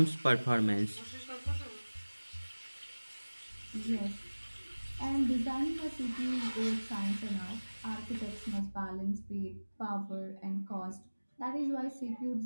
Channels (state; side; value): inverted; both; correlation -1.00